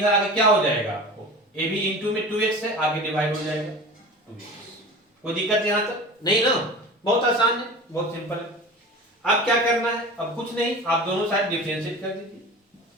आगे क्या हो जाएगा आपको, a भी इनटू में 2x है, आगे डिवाइड हो जाएगा 2x। कोई दिक्कत यहां तक नहीं ना, बहुत आसान है, बहुत सिंपल है। अब क्या करना है, अब कुछ नहीं, आप दोनों साइड डिफरेंशिएट कर दीजिए।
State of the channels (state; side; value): normal; both; correlation 0.35